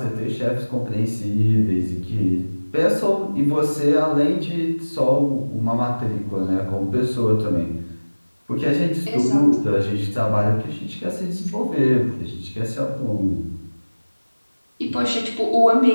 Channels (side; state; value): both; inverted; correlation -1.00